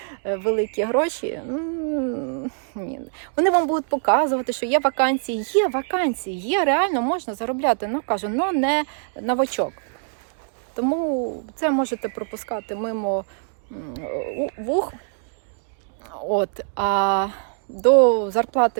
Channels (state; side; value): silent; left; digital silence